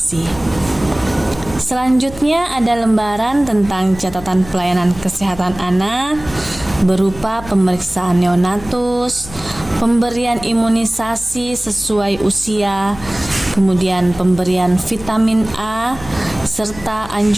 Selanjutnya ada lembaran tentang catatan pelayanan kesehatan anak berupa pemeriksaan neonatus, pemberian imunisasi sesuai usia, kemudian pemberian vitamin A, serta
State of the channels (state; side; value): noise; left; hum, 16 dB below the sound